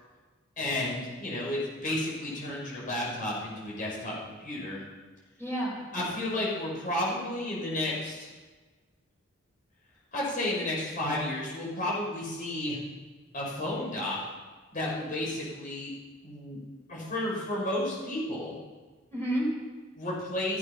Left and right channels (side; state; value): both; normal; correlation 0.40